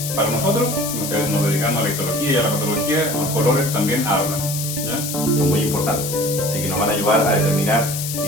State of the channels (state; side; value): noise; left; hiss, 5 dB below the sound